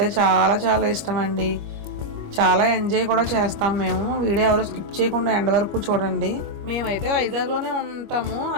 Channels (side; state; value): left; late; 25 ms